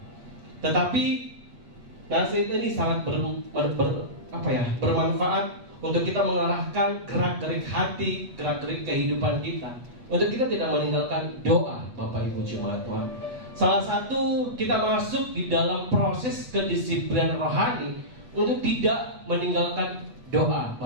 Tetapi nasihat ini sangat bermanfaat untuk kita mengarahkan gerak-gerik hati, gerak-gerik kehidupan kita, untuk kita tidak meninggalkan doa Bapak Ibu Jemaat Tuhan. Salah satu kita masuk di dalam proses kedisiplinan rohani untuk tidak meninggalkan doa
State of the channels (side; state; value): left; late; 8.3 ms